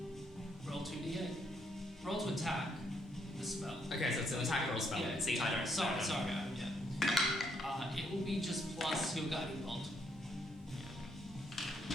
Roll 2d8. Roll to attack the spell. Okay, so it's an attack roll spell. Yeah, See, I don't. Sorry. Yeah. It will be just plus your guiding bolt.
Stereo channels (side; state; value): both; normal; correlation 0.74